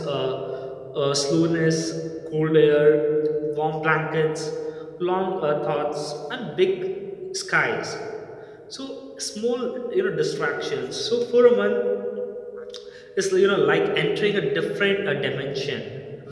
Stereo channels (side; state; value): both; identical; correlation 1.00